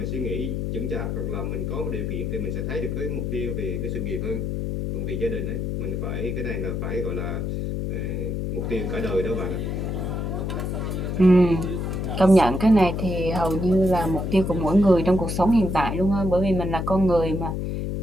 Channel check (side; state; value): left; noise; hum, 2 dB below the sound